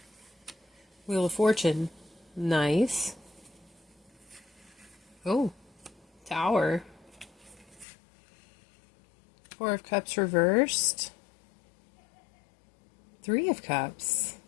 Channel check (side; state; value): right; drops out; at 7.9 s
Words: Wheel of Fortune. Nice. Oh, Tower. Four of Cups reversed. Three of Cups.